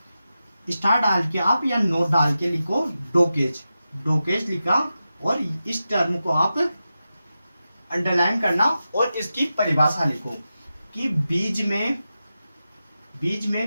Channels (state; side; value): inverted; both; correlation -0.91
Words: स्टार डाल के आप या नोट डाल के लिखो डोकेज, डोकेज लिखा, और इस टर्म को आप अंडरलाइन करना और इसकी परिभाषा लिखो कि बीज